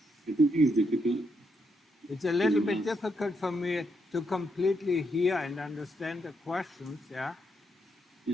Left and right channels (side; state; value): both; normal; correlation 0.79